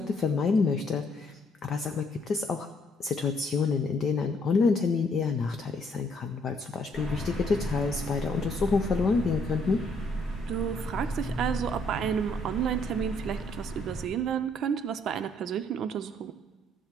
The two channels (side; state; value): both; normal; correlation 0.68